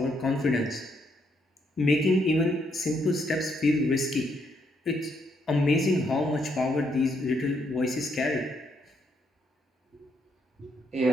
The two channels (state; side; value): normal; both; correlation 0.75